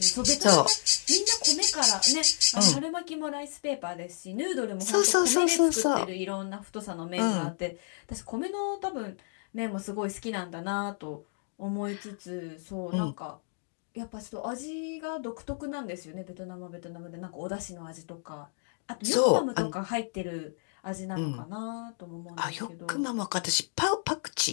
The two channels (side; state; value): right; silent; digital silence